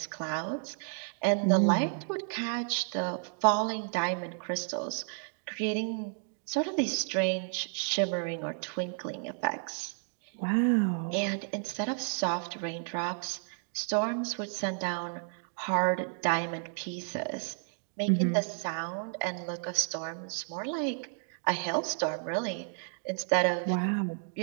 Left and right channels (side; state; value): left; silent; 57 dB below the other